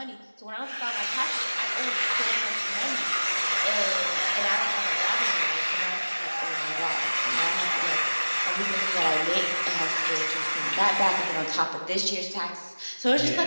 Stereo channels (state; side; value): inverted; both; correlation -1.00